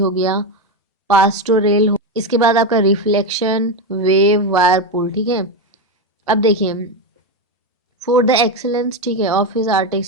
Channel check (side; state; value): both; normal; correlation 0.12